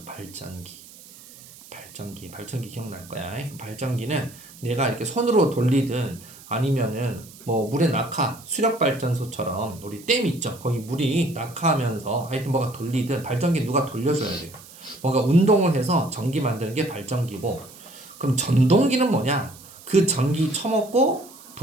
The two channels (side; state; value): right; noise; hiss, 20 dB below the sound